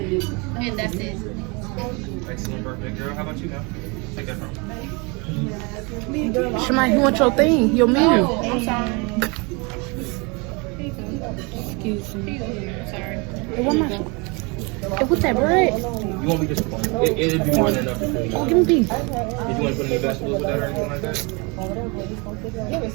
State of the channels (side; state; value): left; quieter; 29.5 dB